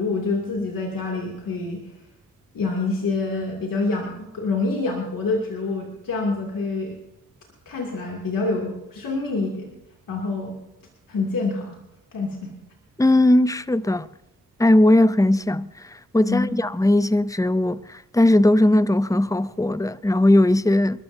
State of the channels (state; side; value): normal; both; correlation 0.85